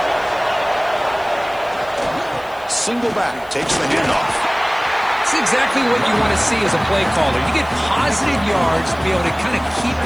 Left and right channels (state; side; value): noise; right; hiss, 26 dB below the sound